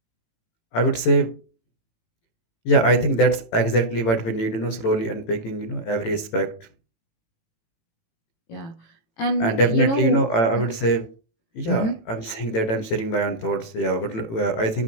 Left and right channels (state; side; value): late; right; 18 ms